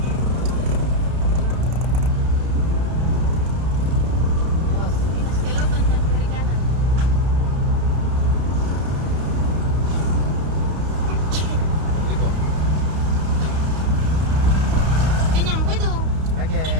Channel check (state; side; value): late; left; 31 ms